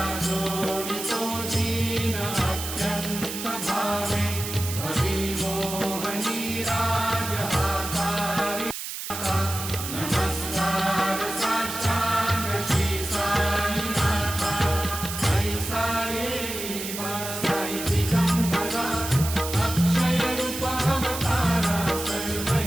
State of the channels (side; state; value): right; noise; hiss, 7 dB below the sound